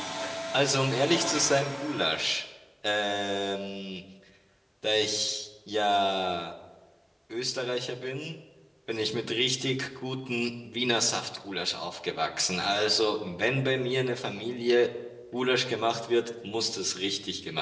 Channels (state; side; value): identical; both; correlation 1.00